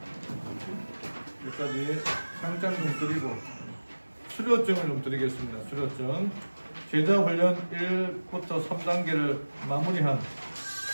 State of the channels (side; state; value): both; inverted; correlation -1.00